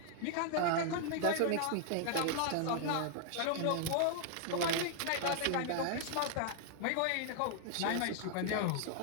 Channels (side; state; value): both; different; correlation -0.01